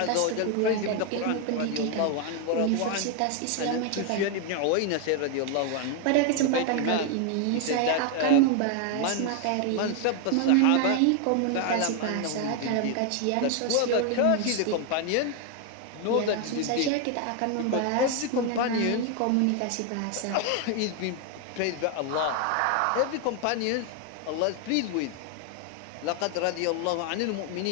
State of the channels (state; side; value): different; both; correlation 0.01